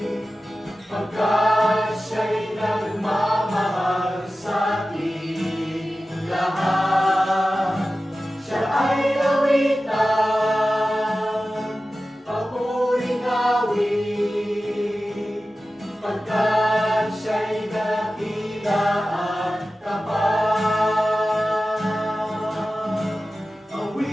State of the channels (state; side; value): normal; both; correlation 0.95